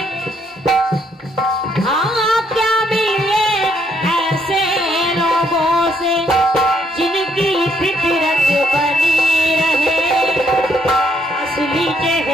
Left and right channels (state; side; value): normal; both; correlation 0.71